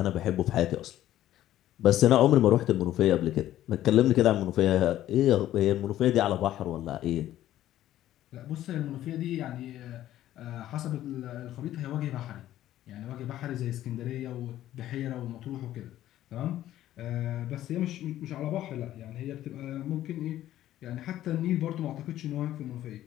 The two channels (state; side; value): quieter; right; 13.2 dB